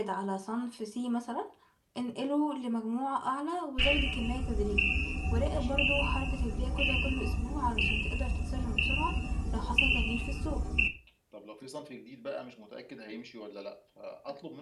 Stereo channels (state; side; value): identical; both; correlation 1.00